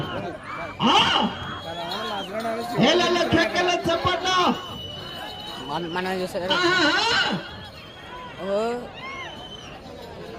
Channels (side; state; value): both; identical; correlation 1.00